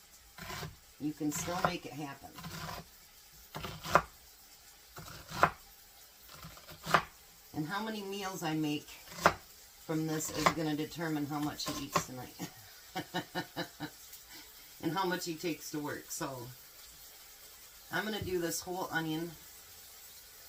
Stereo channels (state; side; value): identical; both; correlation 1.00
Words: You can still make it happen. And how many meals I make from this is going to determine how much he eats tonight. And how much he takes to work. So, I'm going to do this whole onion.